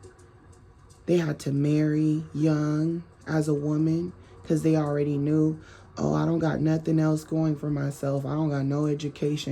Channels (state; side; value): identical; both; correlation 1.00